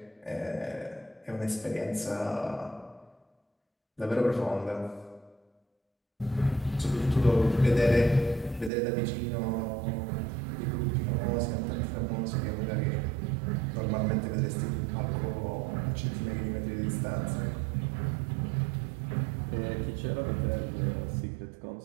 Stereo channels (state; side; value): drops out; left; at 8.7 s